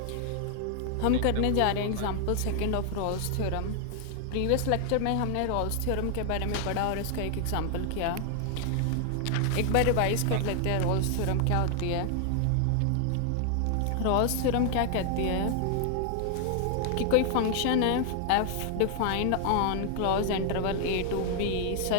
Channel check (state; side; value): different; both; correlation 0.00